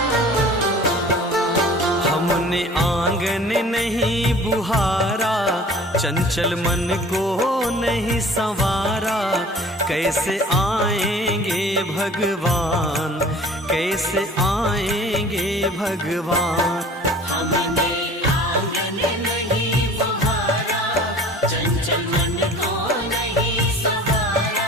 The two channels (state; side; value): normal; both; correlation 0.46